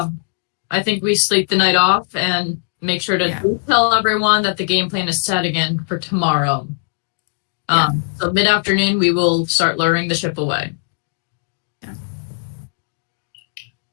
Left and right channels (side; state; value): right; silent; digital silence